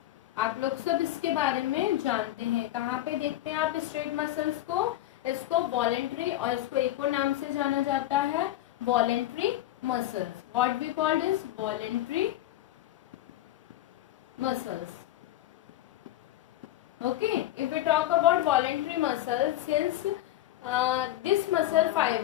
आप लोग सब इसके बारे में जानते हैं. कहाँ पे देखते हैं आप स्ट्रेट मसल्स को? इसको वॉलेंट्री, और इसको एक और नाम से जाना जाता है voluntary muscles. What we called is voluntary muscles. Okay, if we talk about voluntary muscles, since this muscle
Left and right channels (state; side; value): quieter; right; 14.2 dB